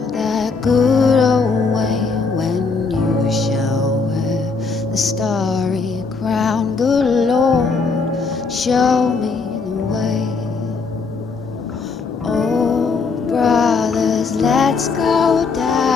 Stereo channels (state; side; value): quieter; right; 4.5 dB